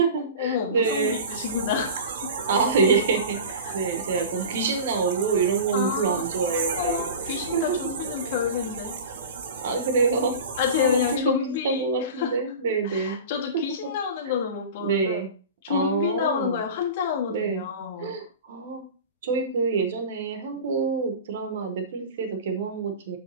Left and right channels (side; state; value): both; inverted; correlation -0.33